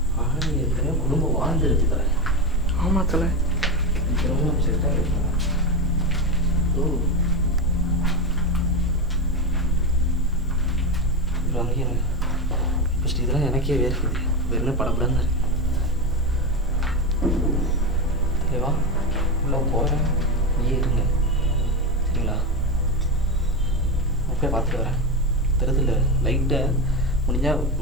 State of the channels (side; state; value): both; normal; correlation 0.15